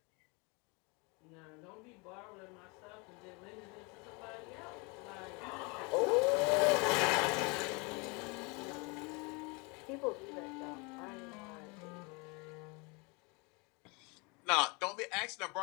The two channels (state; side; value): quieter; right; 29.5 dB